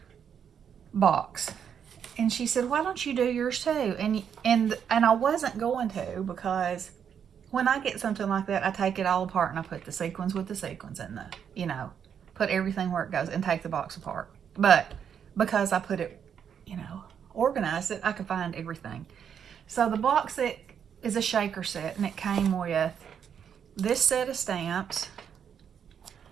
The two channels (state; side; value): quieter; left; 8.0 dB